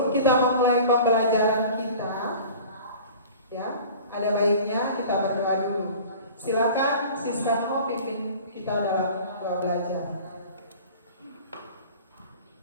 kita memulai pembelajaran kita, ya, ada baiknya kita berdoa dulu. Silakan Siska Nomo pimpin kita dalam doa belajar.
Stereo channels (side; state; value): both; inverted; correlation -0.42